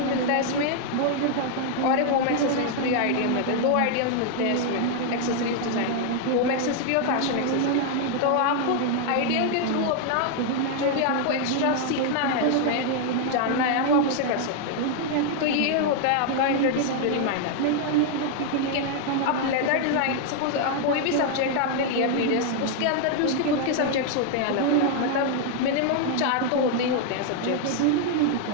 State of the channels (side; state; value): both; different; correlation 0.00